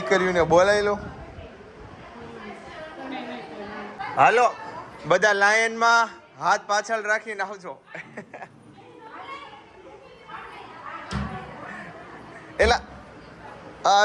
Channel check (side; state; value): both; identical; correlation 1.00